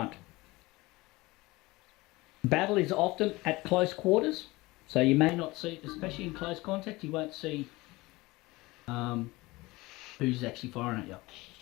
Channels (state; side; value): quieter; right; 21.4 dB